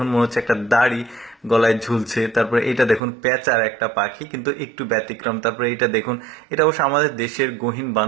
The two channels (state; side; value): drops out; left; at 3.0 s